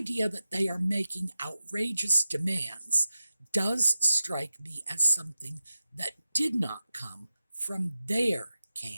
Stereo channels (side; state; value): both; inverted; correlation -0.92